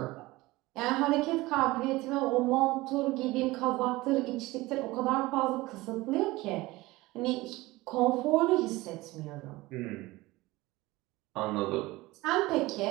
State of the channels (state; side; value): quieter; left; 20.0 dB